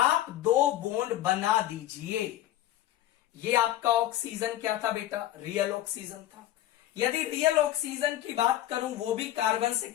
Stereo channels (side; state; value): right; quieter; 13.4 dB